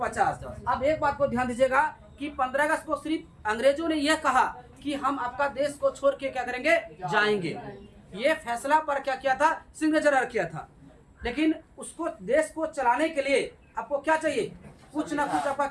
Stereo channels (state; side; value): identical; both; correlation 1.00